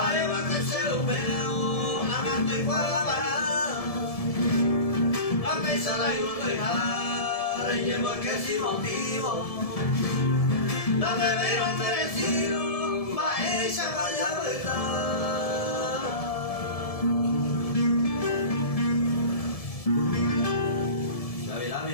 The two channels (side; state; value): right; late; 1.7 ms